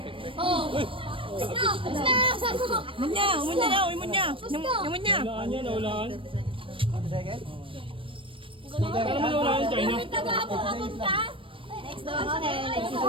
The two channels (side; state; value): left; late; 0.25 ms